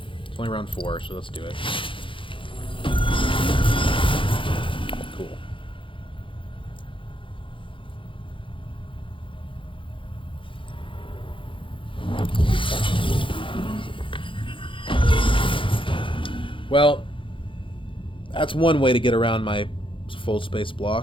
It's only round 4, so let's do it. Cool. Well, that's one way to get around my fold space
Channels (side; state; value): right; late; 0.25 ms